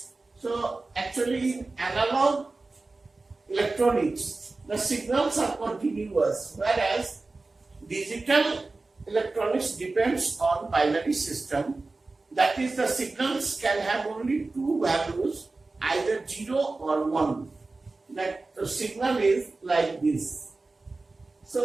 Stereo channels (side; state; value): left; quieter; 3.5 dB